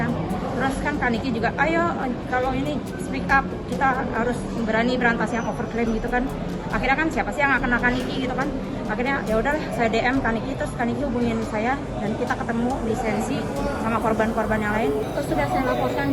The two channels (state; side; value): identical; both; correlation 1.00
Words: Terus kan Kaniki juga, ayo kalau ini speak up, kita harus berani berantas yang overclaim gitu kan. Akhirnya kan siapa sih yang akan Kaniki gitu kan. Akhirnya ya udahlah saya DM Kaniki, terus Kaniki hubungin saya dan kita ketemu lisensi sama korban-korban yang lain. Terus sudah saya laporkan